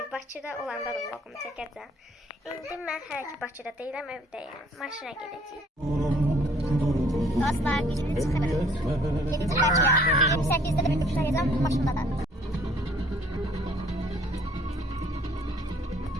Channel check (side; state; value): both; normal; correlation 0.58